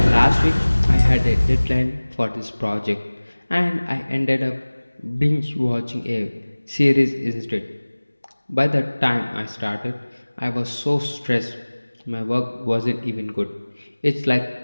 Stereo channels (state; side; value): inverted; both; correlation -1.00